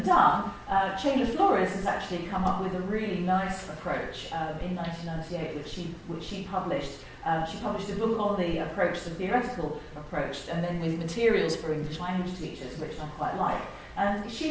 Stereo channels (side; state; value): both; identical; correlation 1.00